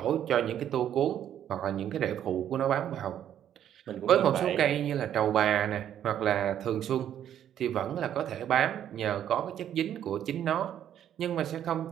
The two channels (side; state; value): left; quieter; 10.3 dB